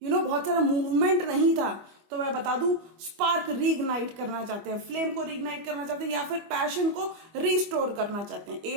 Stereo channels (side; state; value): left; late; 25 ms